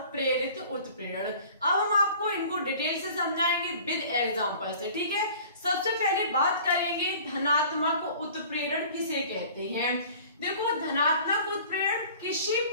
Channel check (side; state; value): both; inverted; correlation -0.46